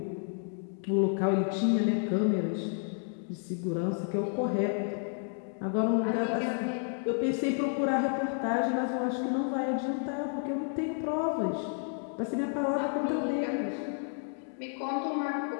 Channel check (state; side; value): silent; right; 57 dB below the other